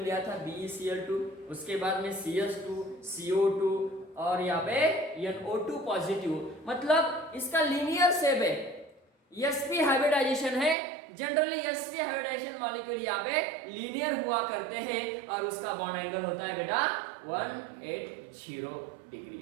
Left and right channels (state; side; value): drops out; left; at 10.8 s